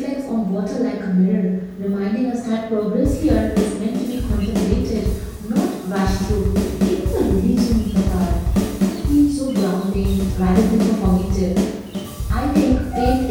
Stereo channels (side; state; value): both; identical; correlation 1.00